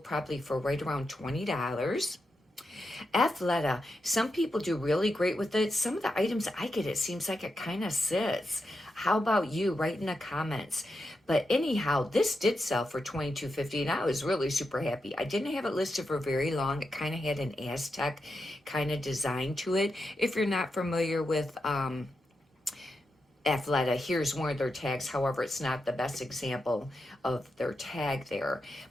probably for right around $20. Athleta, some people do really great with it. Some of the items I get, it seems like it kind of sits. How about you? Write in the comments. But anyhow, this did sell for $22.50, and I was really super happy. I didn't have it listed for very long. It kind of had an Aztec kind of design to it. If you're not familiar with Athleta, here's one of their tags. However, it's not the best example of their tag there.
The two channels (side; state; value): both; normal; correlation 0.87